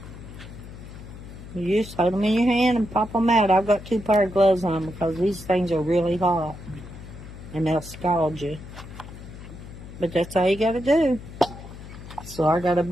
You just hold them in your hand and pop them out. I've got 2 pair of gloves on because these things are really hot and they'll scald you. But that's all you got to do. So I got a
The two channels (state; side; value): noise; left; hum, 14 dB below the sound